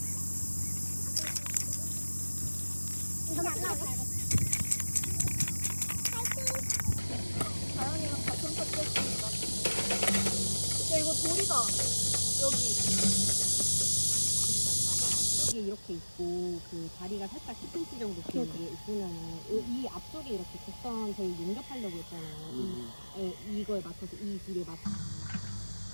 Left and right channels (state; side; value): inverted; both; correlation -1.00